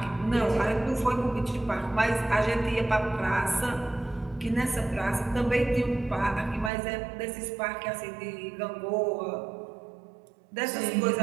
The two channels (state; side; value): drops out; left; at 6.7 s